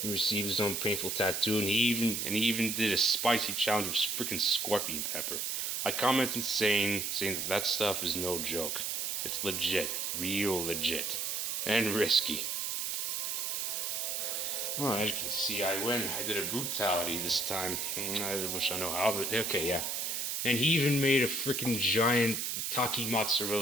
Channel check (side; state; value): right; noise; hiss, 1 dB below the sound